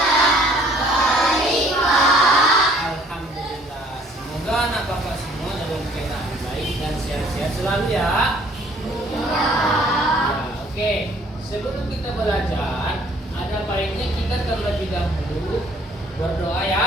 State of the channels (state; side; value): normal; both; correlation 0.58